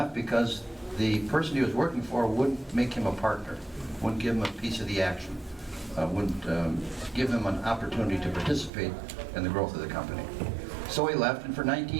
because the person he was working for wouldn't make him a partner, wouldn't give him a piece of the action, wouldn't give him an opportunity to participate in the growth of the company. So he left, and for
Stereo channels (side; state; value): left; drops out; at 8.7 s